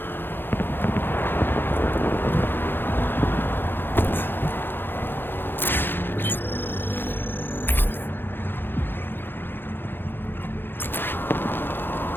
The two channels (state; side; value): late; right; 0.10 ms